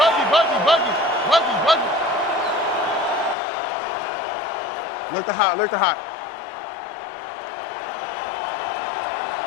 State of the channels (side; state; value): right; drops out; at 3.4 s